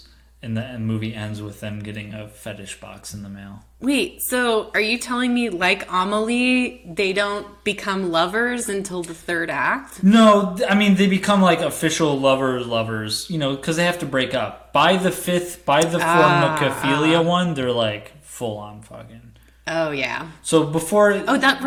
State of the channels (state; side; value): identical; both; correlation 1.00